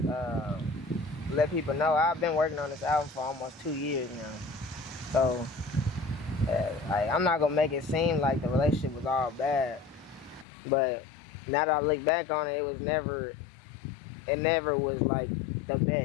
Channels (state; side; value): drops out; right; at 10.5 s